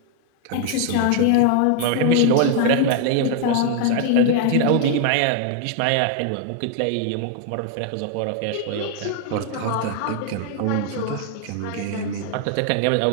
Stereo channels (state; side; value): different; both; correlation 0.00